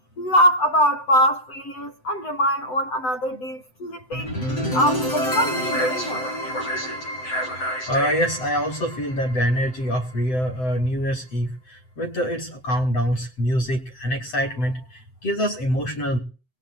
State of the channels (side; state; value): right; late; 7.8 ms